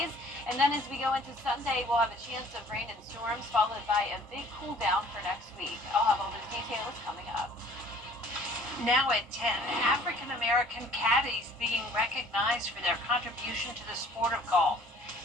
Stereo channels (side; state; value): both; normal; correlation 0.53